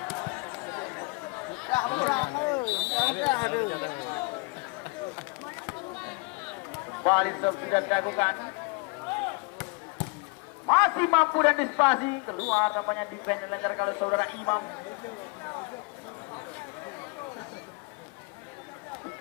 Dah kurang dah ada. Balik sudah dilakukan. Masih mampu dan dispasi. Keluar namanya defense dilancarkan oleh saudara Imam.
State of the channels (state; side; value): quieter; right; 29.5 dB